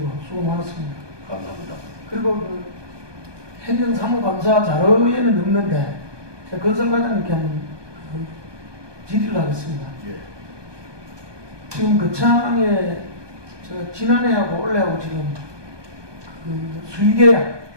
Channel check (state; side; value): late; left; 1.2 ms